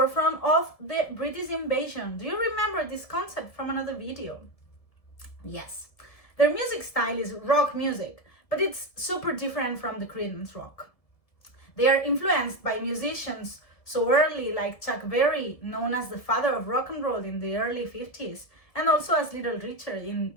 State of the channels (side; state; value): right; late; 1.7 ms